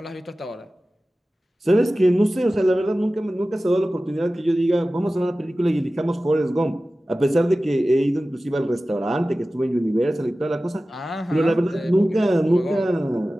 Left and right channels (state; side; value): normal; both; correlation 0.96